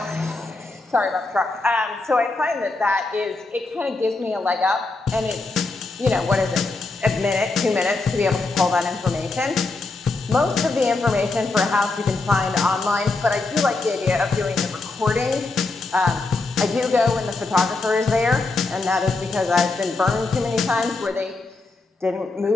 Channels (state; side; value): quieter; right; 3.5 dB